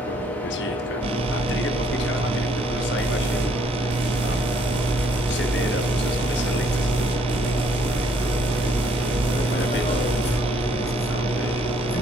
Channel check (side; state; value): both; normal; correlation 0.67